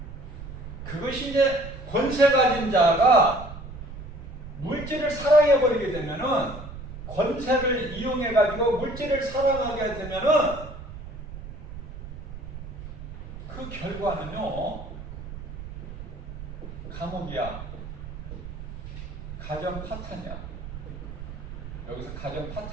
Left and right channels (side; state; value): right; noise; rumble, 11 dB below the sound